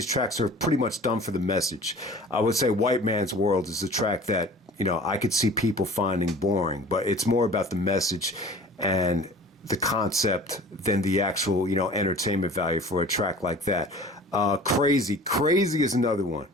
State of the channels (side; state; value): both; normal; correlation 0.44